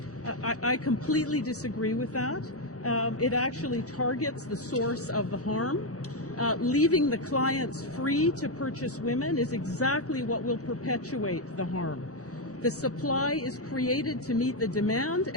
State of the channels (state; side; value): normal; both; correlation 0.04